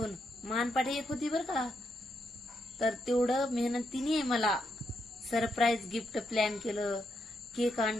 मानपाठी एक होती बर का, तर तेवढं मेहनतीने मला सरप्राईज गिफ्ट प्लॅन केलं. केक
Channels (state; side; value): normal; both; correlation 0.81